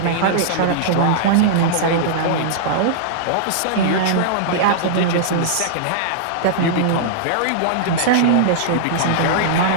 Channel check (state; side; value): different; both; correlation -0.02